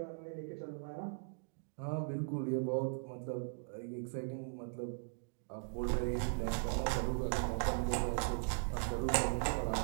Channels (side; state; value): left; silent; digital silence